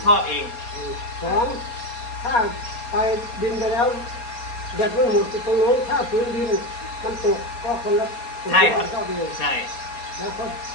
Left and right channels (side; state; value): right; late; 4.3 ms